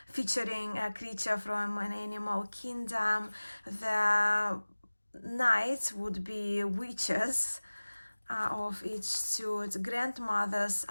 featuring a creature from an animal kingdom. The knights would be witches of each suit. Grandmothers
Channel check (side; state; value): both; inverted; correlation -1.00